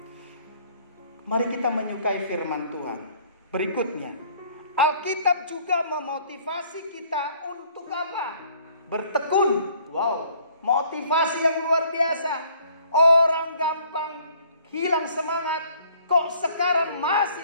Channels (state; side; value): inverted; both; correlation -0.59